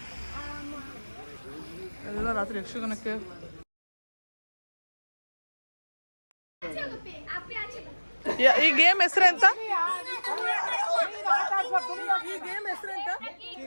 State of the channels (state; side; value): inverted; both; correlation -1.00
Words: ಎಲ್ಲ ರಾತ್ರಿ ಯಕ್ಷಗಾನಕ್ಕೆ. ಈ ಗೇಮ್ ಹೆಸರೆಂತ? ಈ ಗೇಮ್ ಹೆಸರೆಂತ?